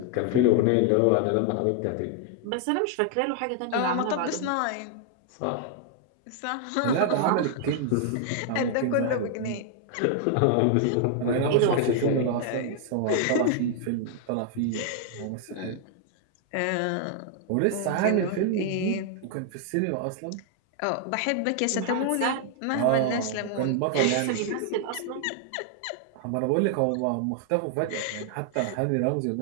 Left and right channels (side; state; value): both; different; correlation 0.00